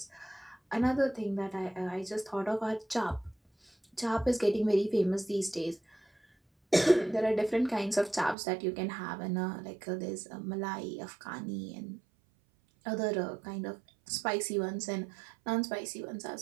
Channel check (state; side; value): drops out; left; at 8.3 s